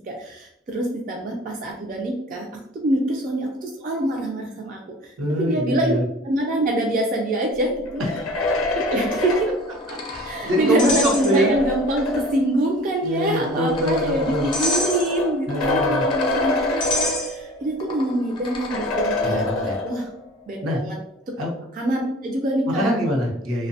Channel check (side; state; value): both; normal; correlation 0.44